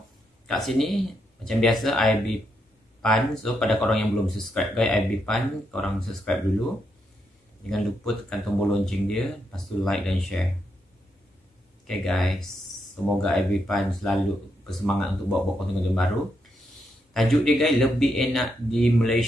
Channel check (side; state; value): both; normal; correlation 0.81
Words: kat sini macam biasa IB Pan. So pada korang yang belum subscribe guys, IB Pan, korang subscribe dulu. Jangan lupa tekan tombol lonceng dia, lepas tu like dan share. Okay guys, semoga IB Pan selalu bersemangat untuk buat konten-konten baru. Tajuk dia guys, lebih enak di